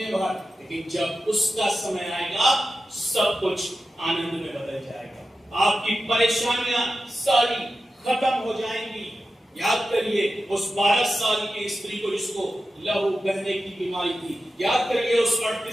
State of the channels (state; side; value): normal; both; correlation 0.92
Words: भर, लेकिन जब उसका समय आएगा सब कुछ आनंद में बदल जाएगा। आपकी परेशानियां सारी खत्म हो जाएंगी। याद करिए उस 12 साल की स्त्री को जिसको लहू बहने की बीमारी थी। याद करिए उस